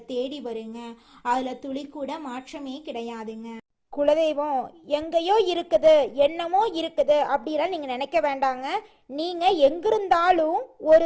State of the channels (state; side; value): identical; both; correlation 1.00